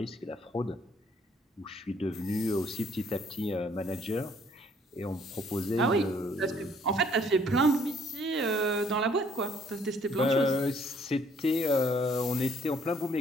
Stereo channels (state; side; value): normal; both; correlation 0.63